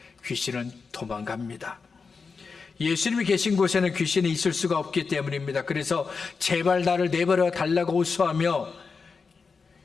귀신은 도망갑니다. 예수님이 계신 곳에는 귀신이 있을 수가 없기 때문입니다. 그래서 제발 나를 내버려 달라고 호소하며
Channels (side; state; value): right; quieter; 5.0 dB